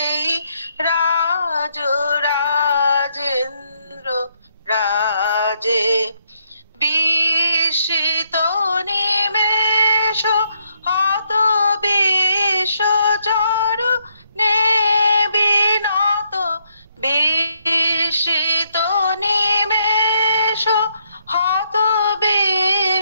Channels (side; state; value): both; inverted; correlation -0.74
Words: রাজ রাজেন্দ্র রাজে বিস্মিত নিমেষ হত বিষ চরণে বিনত বিস্মিত নিমেষ হত